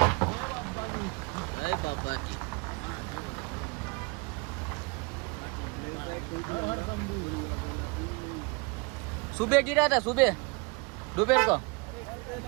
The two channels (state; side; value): quieter; left; 29.0 dB